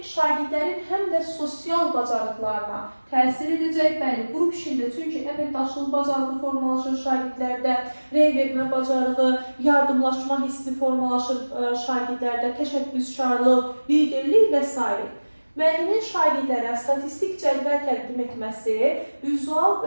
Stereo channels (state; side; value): inverted; both; correlation -1.00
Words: şagirdlərin həm də sosial bacarıqlarına təsir edəcək. Bəli, qrup işində çünki əməkdaşlıq bacarığı formalaşır şagirdlərdə, rey vermə bacarığı, yardımlaşma hissi formalaşır şagirdlərdə, təşəbbüskarlıq, liderlik və s. Müəllimin şagirdlərə statistik cədvəl təqdim etməsi vizual